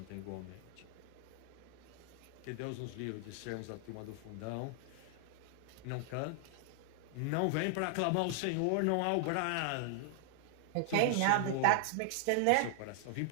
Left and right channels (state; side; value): different; both; correlation 0.00